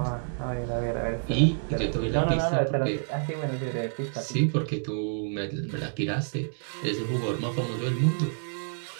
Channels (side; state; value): left; silent; digital silence